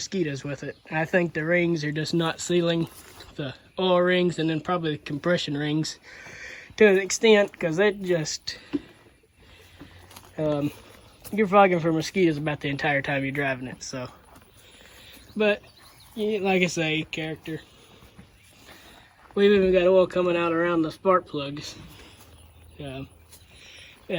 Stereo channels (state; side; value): identical; both; correlation 1.00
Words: with it. I think the rings are just not sealing, the oil rings and then probably the compression rings to an extent, because it just you're fogging for mosquitoes about the entire time you're driving it. So, but yeah, like I say, character. We've even got oil coming out around the spark plugs.